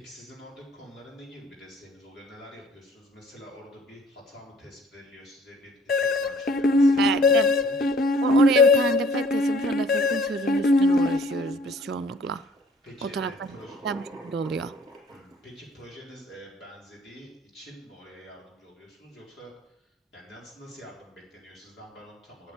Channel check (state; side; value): normal; both; correlation 0.56